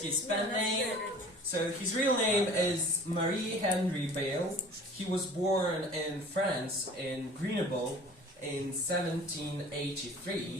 his pen name. So his real name is Marie-Henri Bale. He was born in France, in Grenoble, in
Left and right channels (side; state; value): both; normal; correlation 0.45